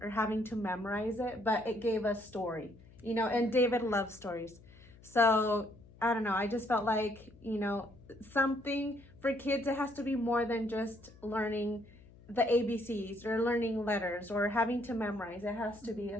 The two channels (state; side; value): noise; left; hum, 23 dB below the sound